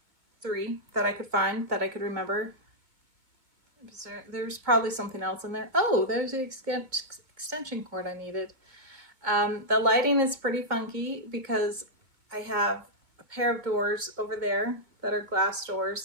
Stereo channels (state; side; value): late; left; 2.2 ms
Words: 3 that I could find, that I could remember. There's probably something else in there. Oh, there's the extension cord I needed. The lighting is pretty funky because I have a pair of doors over there that are glass